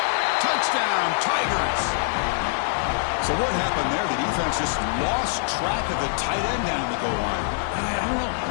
Touchdown, Tigers! So what happened there? The defense just lost track of the tight end down the goal line.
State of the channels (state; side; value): silent; right; digital silence